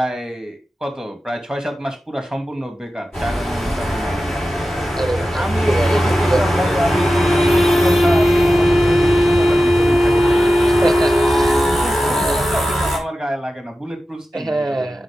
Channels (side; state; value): both; normal; correlation 0.93